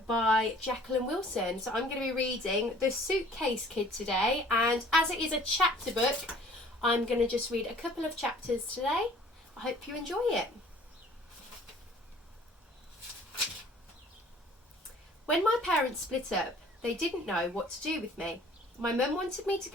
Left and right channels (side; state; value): both; normal; correlation 0.53